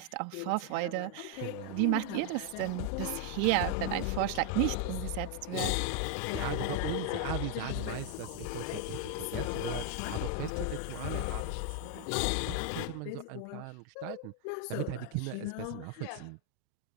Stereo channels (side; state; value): both; different; correlation 0.00